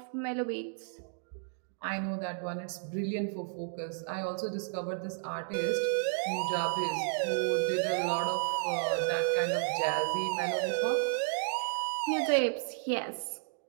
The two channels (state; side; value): silent; left; digital silence